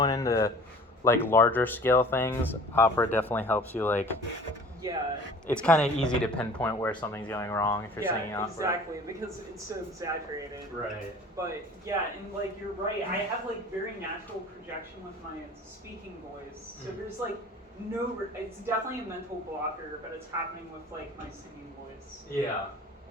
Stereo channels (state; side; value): normal; both; correlation 0.45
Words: into like larger scale things, opera definitely helps you. Like, Yeah. it's kind of easy to pinpoint where something's going wrong if you're singing opera. Exactly, because it's so exaggerated. Right. But yeah, and like you're right, I have like very natural projection with my speaking voice. So there's like it's definitely a mental blocker, but it's happening with like my singing voice. Yeah.